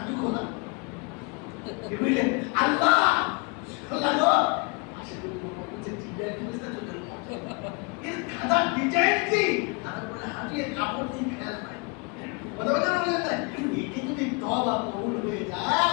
খোলা বুঝলে আল্লাহ আল্লাহ গো আসলে বলছে জিব্রাইল ফেরেশতা চলে এলো, এর খাতা ডিজাইন কি আর বলে হাঁটিয়ে কাপড় দিয়ে খেয়াল নাই কথা বলেন না, এটি যদি তওবা কবুল হয়ে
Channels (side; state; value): right; quieter; 31.5 dB